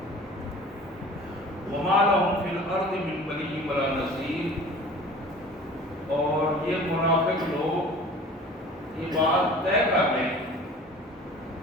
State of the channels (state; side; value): normal; both; correlation 0.43